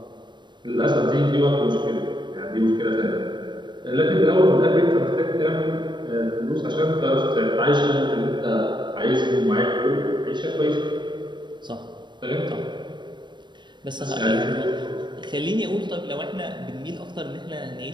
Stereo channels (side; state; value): left; late; 0.22 ms